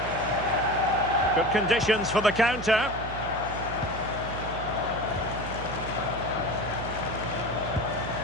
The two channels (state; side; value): noise; right; hum, 9 dB below the sound